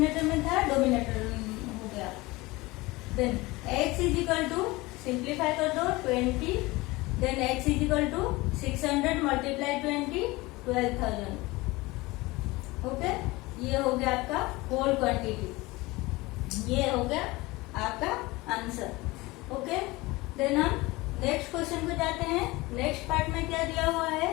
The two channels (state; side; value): quieter; right; 21.7 dB